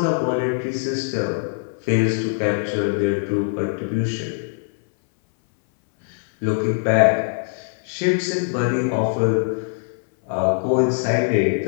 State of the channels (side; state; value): right; silent; 60 dB below the other